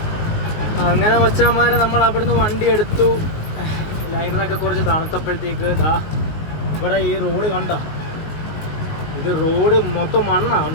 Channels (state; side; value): late; right; 19 ms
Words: അങ്ങനെ മച്ചാന്മാരെ നമ്മൾ അവിടുന്ന് വണ്ടി എടുത്തു. ലൈനറൊക്കെ കുറച്ച് തണുത്തപ്പോഴത്തേക്ക് ഇതാ ഇവിടെ ഈ റോഡ് കണ്ട, ഇത് റോഡ് മൊത്തം മണ്ണാണ്.